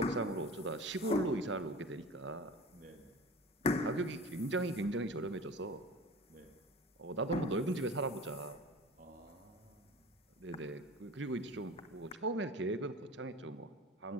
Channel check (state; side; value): normal; both; correlation 0.37